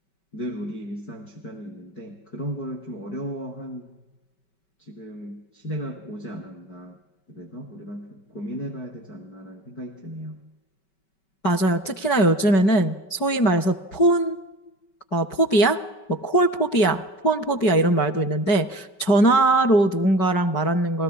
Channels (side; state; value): right; late; 5.2 ms